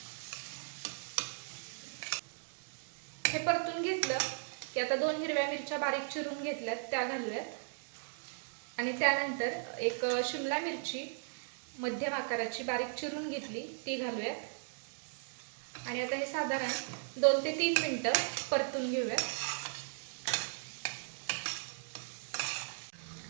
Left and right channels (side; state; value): left; silent; digital silence